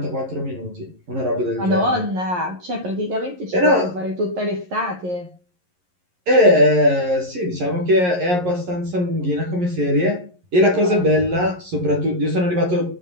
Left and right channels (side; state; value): left; late; 11 ms